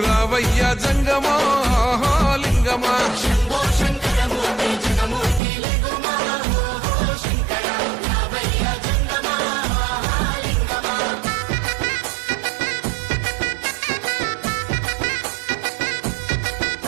రావయ్య జంగమా లింగమా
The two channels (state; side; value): drops out; left; at 5.4 s